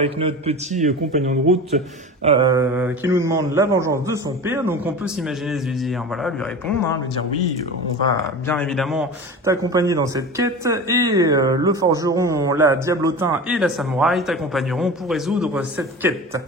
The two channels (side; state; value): both; normal; correlation 0.32